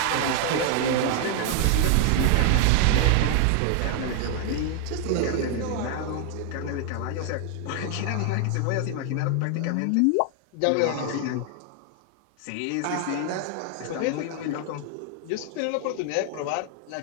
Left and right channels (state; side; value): different; both; correlation 0.00